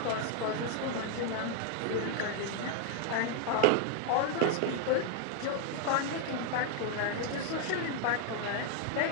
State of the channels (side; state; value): both; different; correlation 0.00